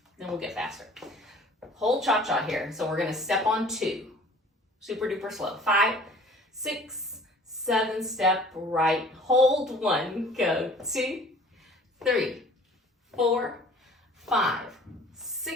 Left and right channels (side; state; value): both; normal; correlation 0.49